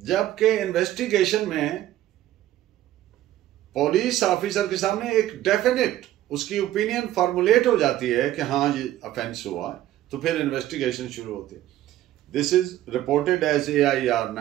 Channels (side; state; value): left; quieter; 13.7 dB